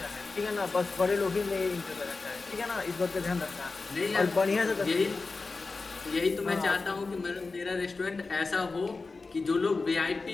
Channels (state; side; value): quieter; right; 3.9 dB